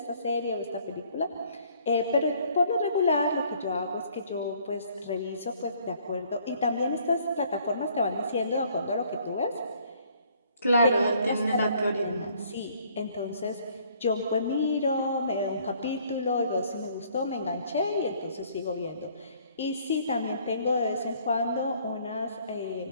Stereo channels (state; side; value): inverted; both; correlation -0.61